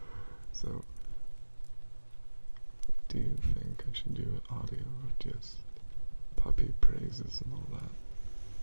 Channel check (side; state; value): both; inverted; correlation -1.00